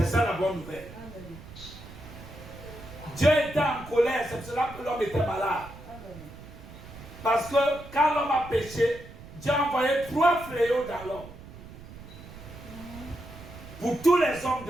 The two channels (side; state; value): right; noise; rumble, 16 dB below the sound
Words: ça la bonne nouvelle. Amen. Dieu était en colère, c'est pour cela que l'homme était malade. Amen. Parce que quand l'homme a péché, Dieu a envoyé 3 fléaux dans l'homme. Pour tous les hommes